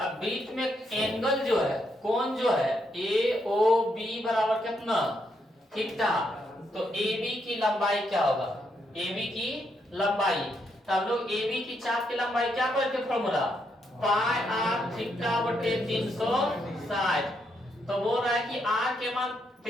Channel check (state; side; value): normal; both; correlation 0.78